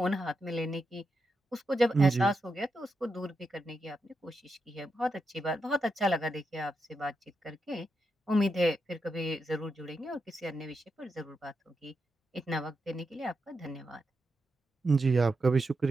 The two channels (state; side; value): normal; both; correlation 0.86